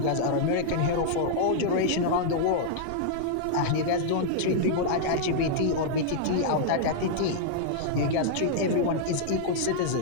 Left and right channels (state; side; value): different; both; correlation -0.01